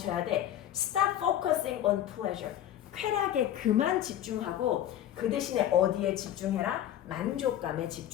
돼? Stop focusing on pleasure. 쾌락에 그만 집중하고 그 대신에 어디에 집중해라? 만족감에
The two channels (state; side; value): quieter; right; 11.6 dB